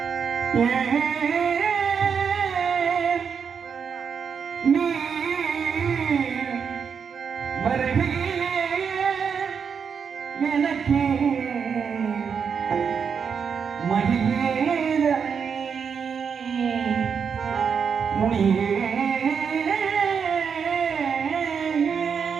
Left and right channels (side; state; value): left; quieter; 6.6 dB